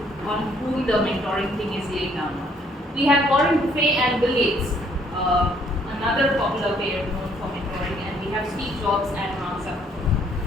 on whom the mentoring thing is laid down on. We have Warren Buffett and Bill Gates, another popular pair known for mentoring, and we have Steve Jobs and Mark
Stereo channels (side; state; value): both; normal; correlation 0.65